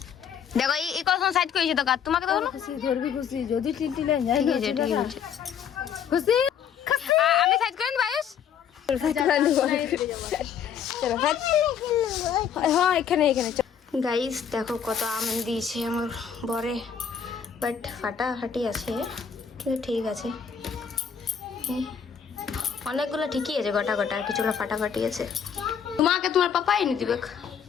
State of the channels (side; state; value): right; quieter; 7.7 dB